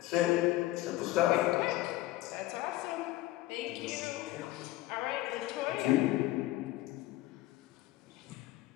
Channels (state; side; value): quieter; right; 17.2 dB